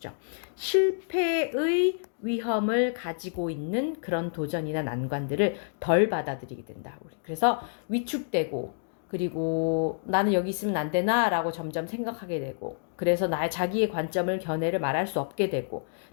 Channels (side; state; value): right; silent; digital silence